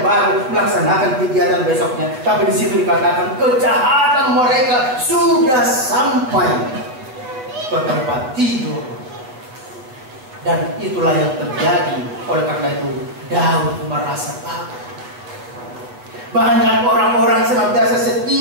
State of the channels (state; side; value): late; left; 7.9 ms